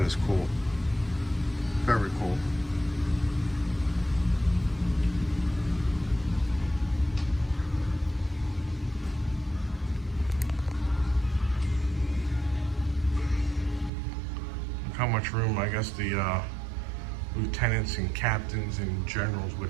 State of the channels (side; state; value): left; drops out; at 13.9 s